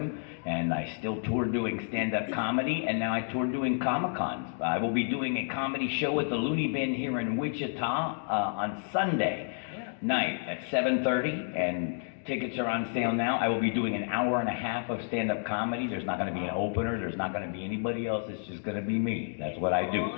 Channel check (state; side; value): silent; right; digital silence